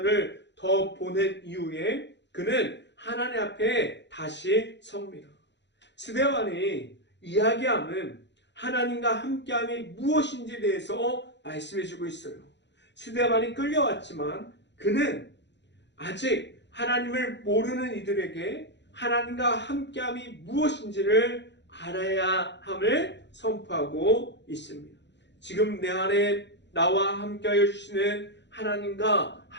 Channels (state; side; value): late; right; 0.52 ms